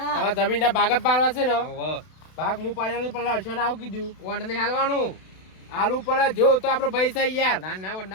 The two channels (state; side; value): late; right; 32 ms